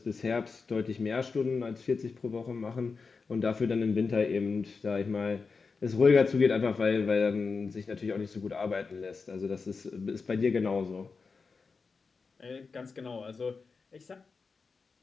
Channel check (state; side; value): quieter; right; 4.7 dB